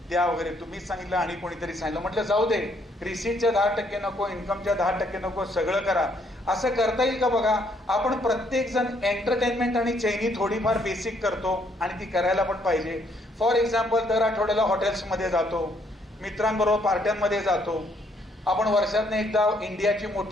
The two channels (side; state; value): both; normal; correlation 0.69